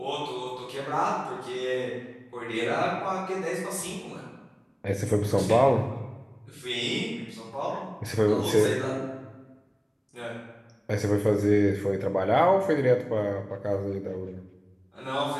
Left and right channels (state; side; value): identical; both; correlation 1.00